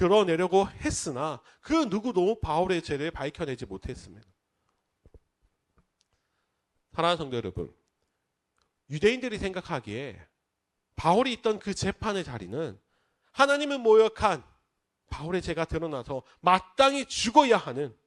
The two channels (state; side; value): identical; both; correlation 1.00